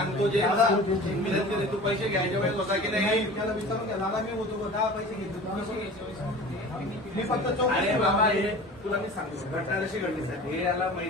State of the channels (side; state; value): both; normal; correlation 0.39